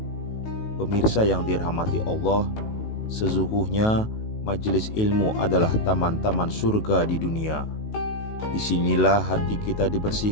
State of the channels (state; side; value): late; right; 19 ms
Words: Pemirsa yang dirahmati Allah, sesungguhnya majelis ilmu adalah taman-taman surga di dunia. Disinilah hati kita